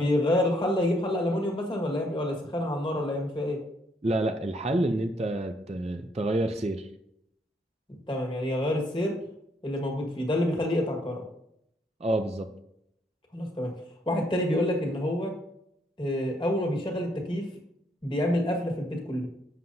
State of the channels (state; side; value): normal; both; correlation 0.71